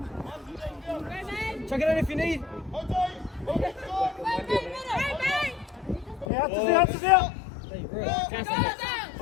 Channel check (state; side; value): drops out; right; at 6.2 s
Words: Chuck it in if you need. Yeah, Ata's out.